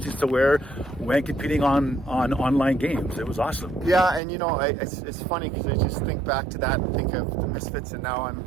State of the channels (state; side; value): drops out; left; at 4.2 s